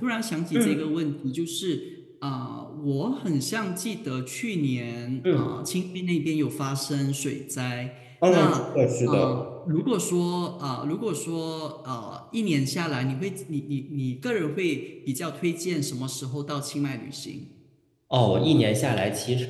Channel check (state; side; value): identical; both; correlation 1.00